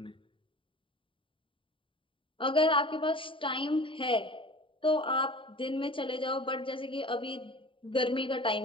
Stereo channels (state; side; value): late; right; 0.25 ms